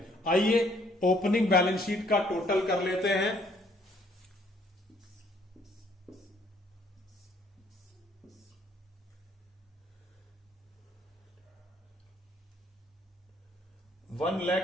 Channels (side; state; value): both; normal; correlation 0.64